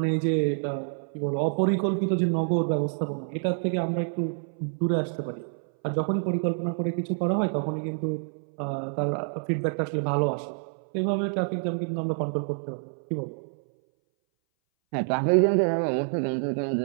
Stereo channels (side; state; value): left; silent; 59 dB below the other